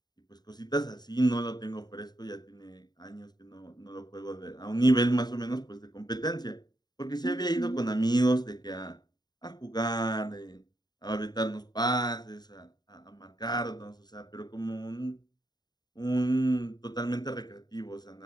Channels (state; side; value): late; right; 0.20 ms